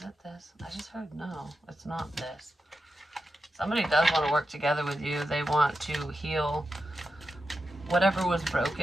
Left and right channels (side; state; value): both; normal; correlation 0.90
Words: it this? I just heard no. It's not this. Somebody does want to work together with you. They want to heal whatever was